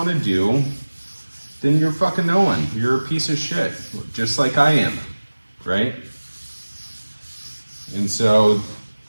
to do, then you're fucking no one. You're a piece of shit, just like I am, right? And so,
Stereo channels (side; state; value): both; inverted; correlation -1.00